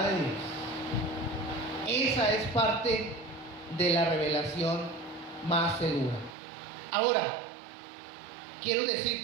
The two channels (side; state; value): left; drops out; at 6.4 s